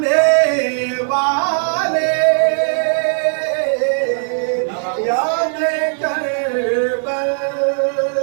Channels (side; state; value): left; silent; digital silence